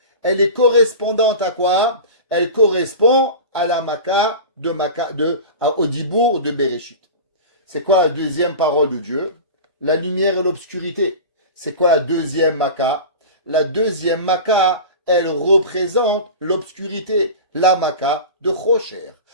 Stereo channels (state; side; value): inverted; both; correlation -0.31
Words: elle est correspondante à quoi? Elle correspond à la Maka au Dibour de Bereshit. C'est quoi la deuxième parole de Dieu? La lumière et l'obscurité. C'est quoi la deuxième Maka? La deuxième Maka, elle représente l'obscurité. La Maka de Chosher.